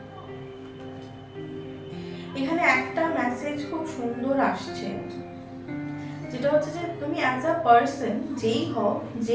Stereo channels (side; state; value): both; identical; correlation 1.00